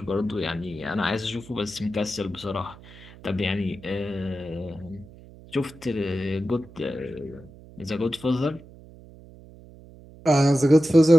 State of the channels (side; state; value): right; noise; hum, 20 dB below the sound